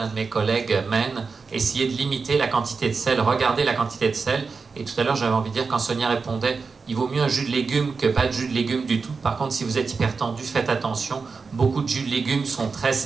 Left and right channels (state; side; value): quieter; left; 4.8 dB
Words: de mes collègues, mène. Essayer de limiter la quantité de sel, regarder la quantité de sel. Et tout à l'heure, j'avais envie de dire, quand Sonia répondait, il vaut mieux un jus de légumes que pas de jus de légumes du tout. Par contre, si vous êtes hypertendu, faites attention. Beaucoup de jus de légumes sont très